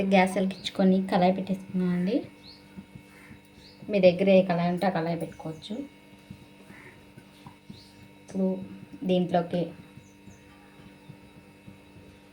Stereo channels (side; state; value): both; identical; correlation 1.00